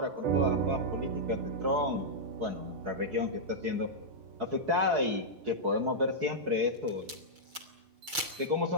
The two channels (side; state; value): left; late; 6.3 ms